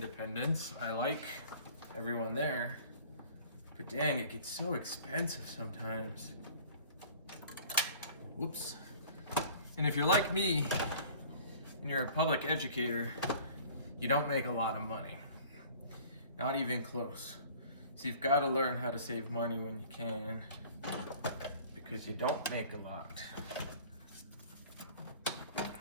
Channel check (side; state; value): both; inverted; correlation -0.49